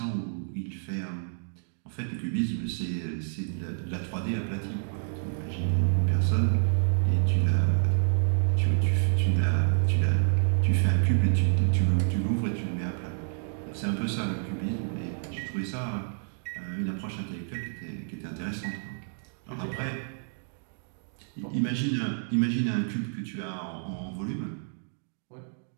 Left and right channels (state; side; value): silent; left; digital silence